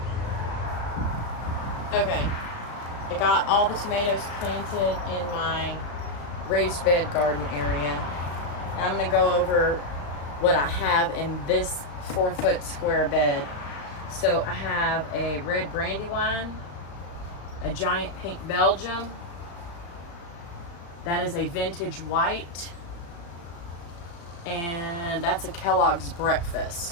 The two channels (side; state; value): right; late; 35 ms